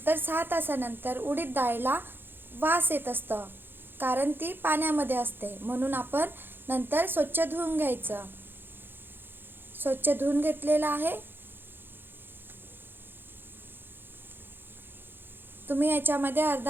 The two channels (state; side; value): late; left; 0.10 ms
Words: 6 तासानंतर उडीद डाळीला वास येत असतं, कारण ती पाण्यामध्ये असते, म्हणून आपण नंतर स्वच्छ धुवून घ्यायचं। स्वच्छ धुवून घेतलेलं आहे। तुम्ही याच्यामध्ये